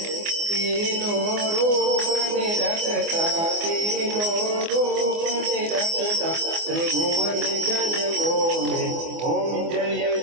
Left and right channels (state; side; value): late; left; 24 ms